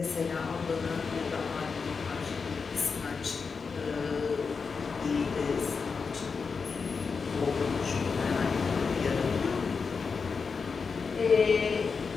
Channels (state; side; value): quieter; right; 5.2 dB